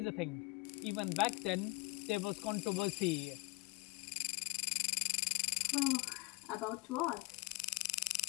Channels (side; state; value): right; quieter; 23.9 dB